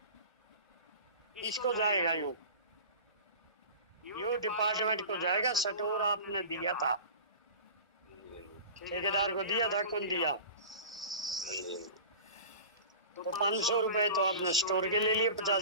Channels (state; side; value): inverted; both; correlation -0.36